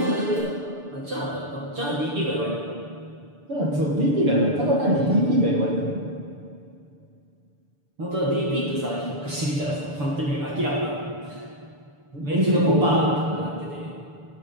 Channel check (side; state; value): left; late; 6.9 ms